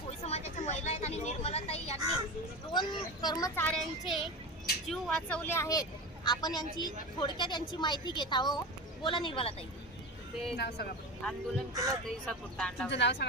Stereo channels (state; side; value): normal; both; correlation 0.25